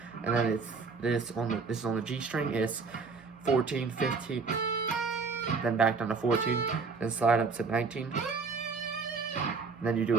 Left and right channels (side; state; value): left; quieter; 4.7 dB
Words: And then it's this is on the G string. It's 14, 15, then back down to 14, then slide up to 19. And then you do